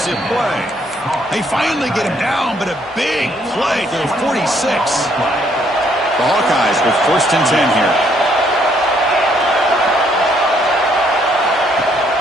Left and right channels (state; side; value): normal; both; correlation 0.68